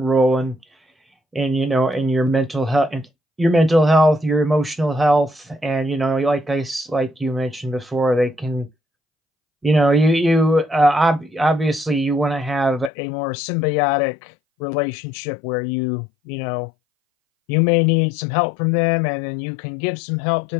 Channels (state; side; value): drops out; right; at 12.9 s